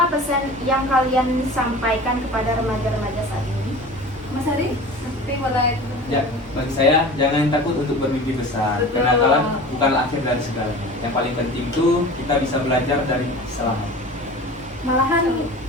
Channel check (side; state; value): both; normal; correlation 0.38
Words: pesan yang kalian sampaikan kepada remaja-remaja saat ini? Mas Heri? Tapi boleh. Ya, bagi saya jangan takut untuk bermimpi besar, Betul. karena kalah bukanlah akhir dari segalanya. Yang paling penting itu kita bisa belajar dari kesalahan. Malahan